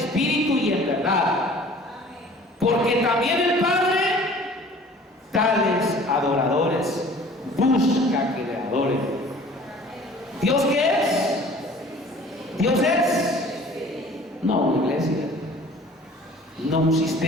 y en verdad. Porque también el Padre, tales adoradores, busca que le adoren. ¿Dios qué es? ¿Dios es? No una iglesia, no un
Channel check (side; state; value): both; normal; correlation 0.49